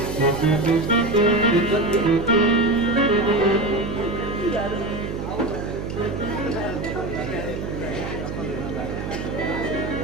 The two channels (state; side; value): noise; right; hum, 6 dB below the sound